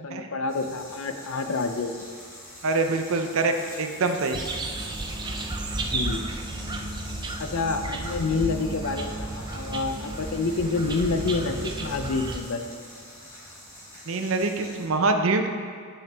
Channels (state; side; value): normal; both; correlation 0.12